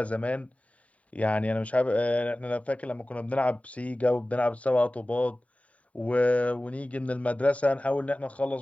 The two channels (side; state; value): right; late; 0.067 ms